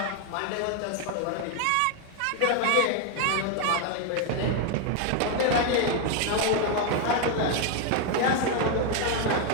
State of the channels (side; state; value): both; different; correlation 0.01